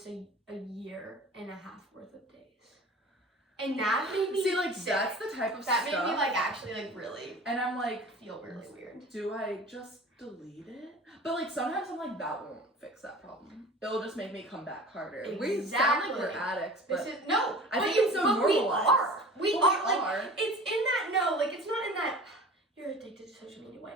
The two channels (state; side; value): normal; both; correlation 0.40